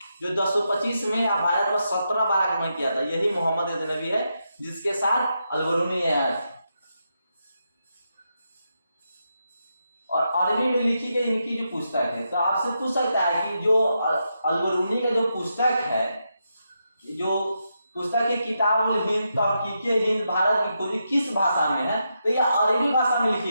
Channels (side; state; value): both; inverted; correlation -0.84